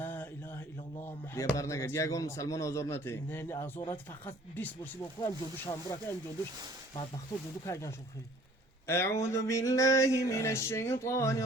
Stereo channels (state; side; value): normal; both; correlation 0.54